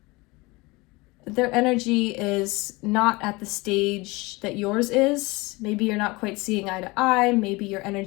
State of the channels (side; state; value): right; quieter; 23.7 dB